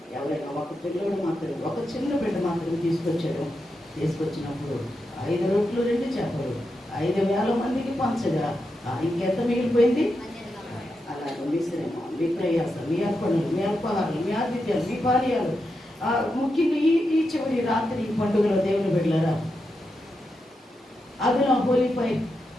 ఎవరైనా ఒక పిల్లడు మాత్రం, ఒక చిన్న బిడ్డ మాత్రం తీసుకొచ్చాడు. తీసుకొచ్చినప్పుడు 5 రొట్టెలు 2 చేపలు 5,000 మందికి పంచగా ఇంకెంత మిగిలిపోయింది? అలాగే మీ శ్రమ, మీ ప్రయాస, మీ అర్పణలు, మీ అల్పాహారాలు, మీ ఆతిథ్యాలు, మీ పానీయాలు, ముఖ్యంగా ఈ చివరి రాత్రి పండుగలో దేవుని బిడ్డలారా, అదన హోలీఫై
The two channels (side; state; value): both; normal; correlation 0.87